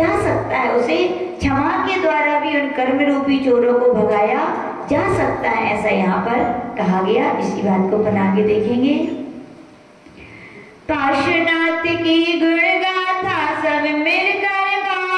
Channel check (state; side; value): identical; both; correlation 1.00